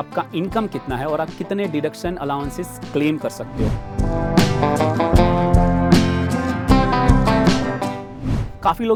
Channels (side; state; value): both; identical; correlation 1.00